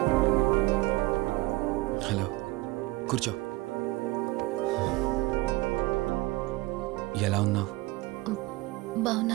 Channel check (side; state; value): left; quieter; 20.7 dB